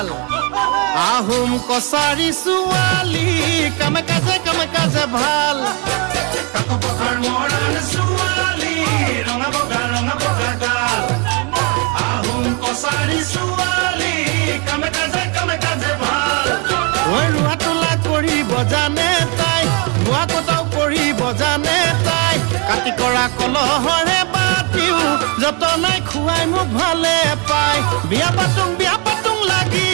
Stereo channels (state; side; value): quieter; left; 32.8 dB